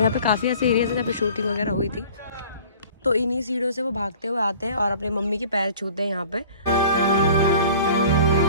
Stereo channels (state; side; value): inverted; both; correlation -0.46